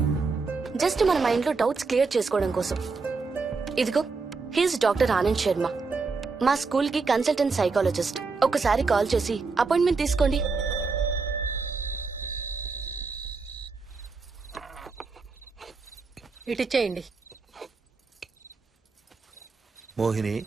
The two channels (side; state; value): left; quieter; 4.4 dB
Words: జస్ట్ మన మైండ్ లో డౌట్స్ క్లియర్ చేసుకోవడం కోసం. ఇదిగో, హీస్ డాక్టర్ ఆనంద్ శర్మ, మా స్కూల్ కి కన్సల్టెంట్ సైకాలజిస్ట్. ఒకసారి కాల్ చేసి అపాయింట్మెంట్ తీసుకోండి. ఇటిచ్చేయండి. మోహిని,